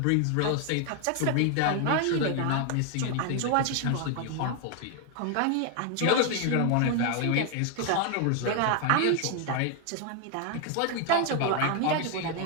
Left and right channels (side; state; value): both; different; correlation 0.00